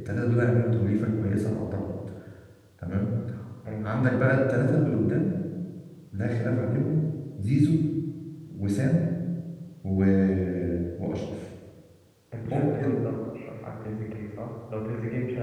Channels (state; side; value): identical; both; correlation 1.00